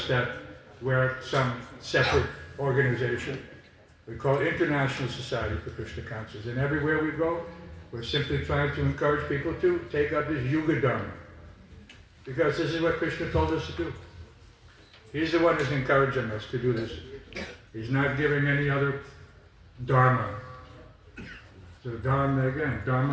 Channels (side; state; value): both; identical; correlation 1.00